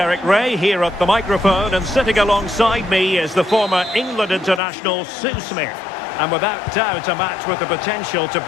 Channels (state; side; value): drops out; right; at 4.6 s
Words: Ray here at the microphone, and sitting alongside me is the former England international Sue Smith. And without doubt a match with the potential to